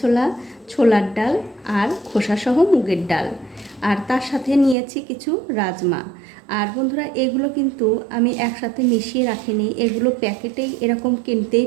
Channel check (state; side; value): drops out; left; at 4.8 s